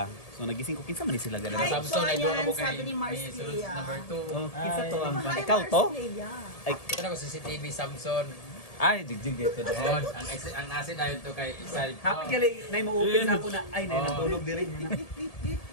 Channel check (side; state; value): right; late; 1.7 ms